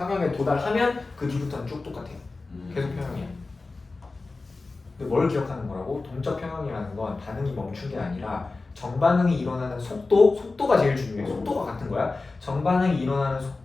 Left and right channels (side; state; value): right; quieter; 3.6 dB